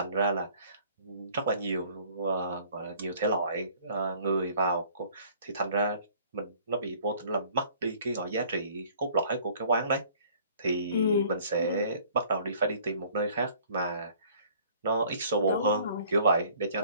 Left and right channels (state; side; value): inverted; both; correlation -0.55